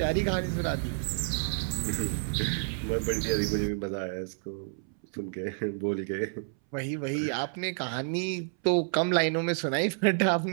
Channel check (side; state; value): left; silent; 58 dB below the other